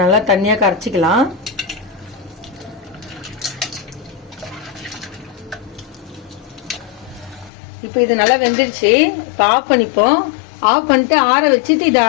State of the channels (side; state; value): right; drops out; at 7.5 s